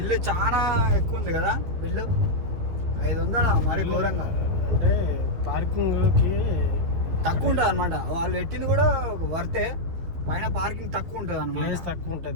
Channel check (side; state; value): left; late; 12 ms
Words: చాలా ఎక్కువ ఉంది కదా. బిల్లు 500 మరి ఘోరంగా. అంటే పార్కింగ్కి తక్కువ ఉంటుంది అనమాట. వాళ్ళు పెట్టింది కూడా వర్తే, పైన పార్కింగ్ తక్కువ ఉంటుంది అన్నమాట. ప్లేస్ తక్కువ